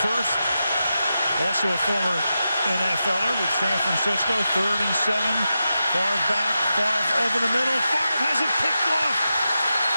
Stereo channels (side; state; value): both; inverted; correlation -0.89